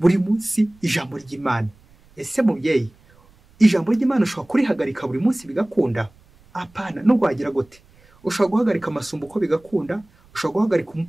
munsi ijambo ry'Imana. Ese mubyeyi, ijambo ry'Imana ushobora kurihagarika buri munsi bigakunda? Apana. Nubwo wagira gute, ushobora guhagarika Masumbuko bigakunda, ushobora guhagarika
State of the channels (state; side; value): noise; right; rumble, 29 dB below the sound